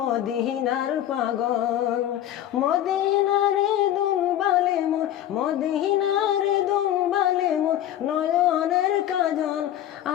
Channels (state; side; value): quieter; right; 11.9 dB